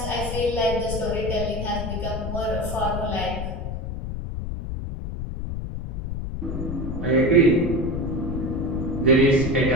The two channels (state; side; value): noise; left; rumble, 5 dB below the sound